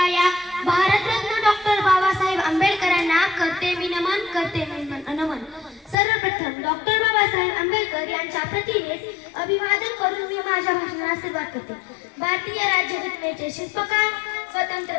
या भारतरत्न डॉक्टर बाबासाहेब आंबेडकरांना करते मी नमन, करते मी नमन. सर्वप्रथम डॉक्टर बाबासाहेब आंबेडकर यांच्या प्रतिमेस अभिवादन करून मी माझ्या भाषणाला सुरुवात करते. भारतीय राज्यघटनेचे शिल्पकार, स्वतंत्र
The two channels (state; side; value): drops out; right; at 6.0 s